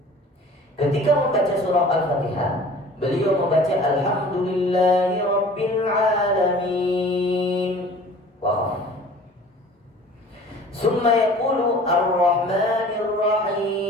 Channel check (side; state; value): both; normal; correlation 0.46